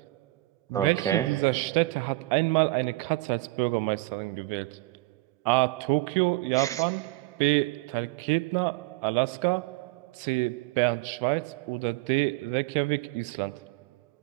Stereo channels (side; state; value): left; quieter; 20.4 dB